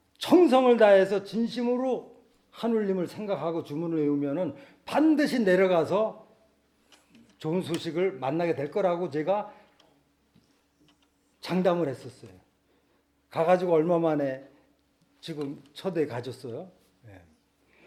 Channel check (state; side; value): identical; both; correlation 1.00